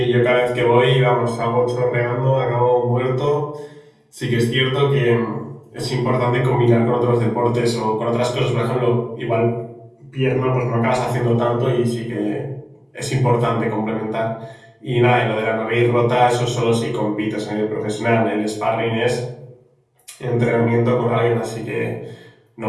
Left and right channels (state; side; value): identical; both; correlation 1.00